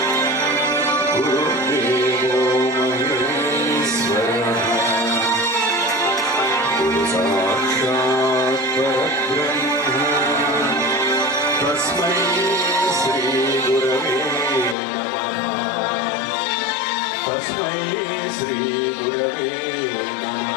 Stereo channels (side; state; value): right; drops out; at 14.8 s